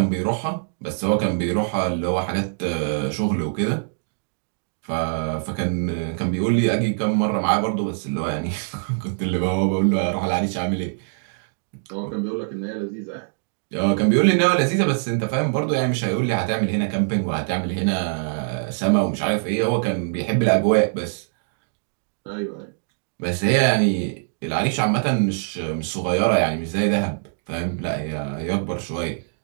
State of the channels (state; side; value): silent; left; digital silence